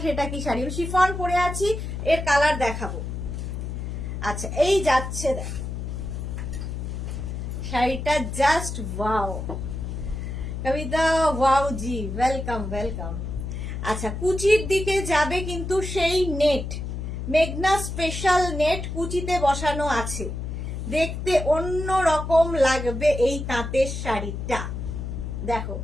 সেটা কি শাড়ি? শিফন পরে আছি, এর কালার দেখাবো। আচ্ছা, এই যাচ্ছে দেখো শাড়িটা, জাস্ট ওয়াও কবিতা, ওয়াও জি, ওয়েলকাম ওয়েলকাম। আচ্ছা, কুচির দিকে যাবে কিন্তু সেই নেট, মেঘনা স্পেশাল নেট কুচিতে বসানো আছে, দেখতে অন্য রকম লাগবে এই তাঁতের শাড়িটা। দেখো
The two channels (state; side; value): noise; left; hum, 5 dB below the sound